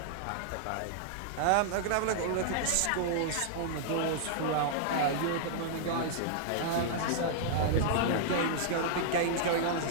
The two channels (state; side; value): different; both; correlation -0.01